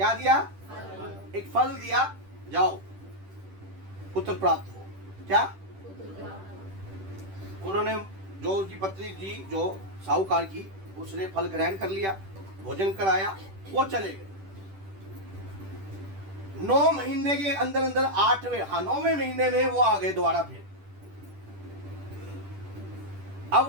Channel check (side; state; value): left; late; 10 ms